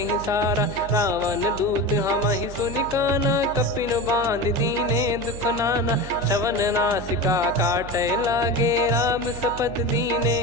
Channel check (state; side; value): noise; right; hum, 12 dB below the sound